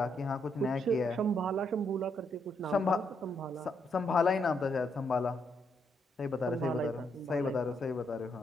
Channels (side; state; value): both; normal; correlation 0.76